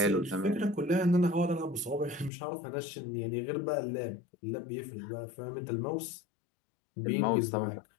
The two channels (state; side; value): drops out; right; at 2.3 s